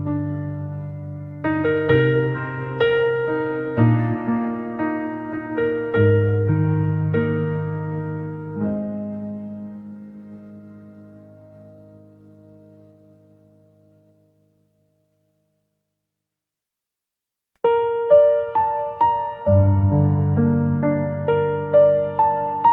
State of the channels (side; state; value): both; identical; correlation 1.00